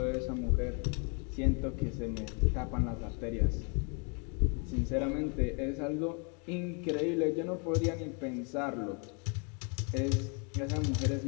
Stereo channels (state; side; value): quieter; right; 36.6 dB